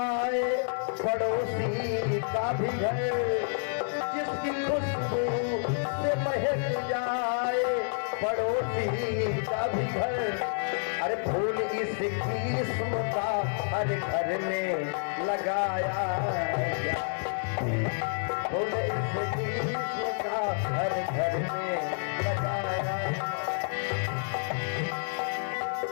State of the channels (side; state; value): right; silent; 58 dB below the other